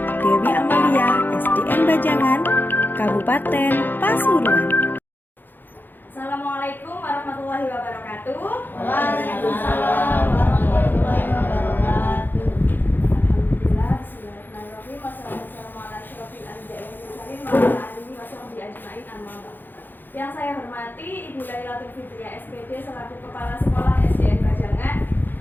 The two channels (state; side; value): late; right; 0.091 ms